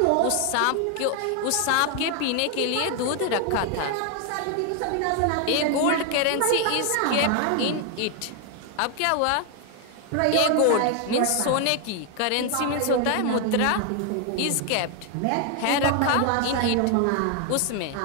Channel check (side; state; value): both; different; correlation 0.00